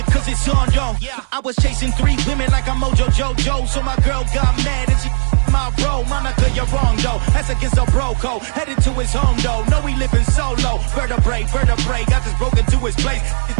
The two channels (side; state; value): left; silent; 60 dB below the other